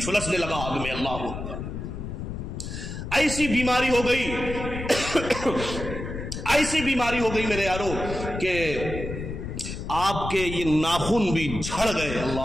لگا آگ میں۔ اللہ اکبر، ایسی بیماری ہو گئی ایسی بیماری ہو گئی میرے یارو کہ آپ کے یہ ناخن بھی جھڑ گئے۔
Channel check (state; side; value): noise; left; rumble, 7 dB below the sound